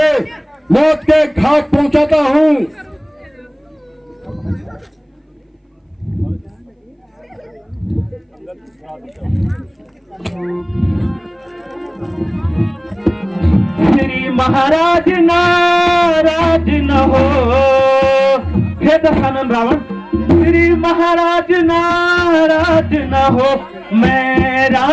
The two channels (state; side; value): identical; both; correlation 1.00